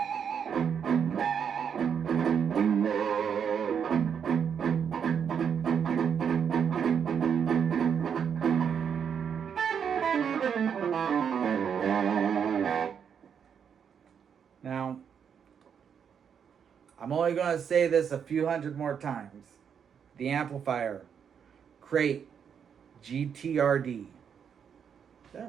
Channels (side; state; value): left; quieter; 7.5 dB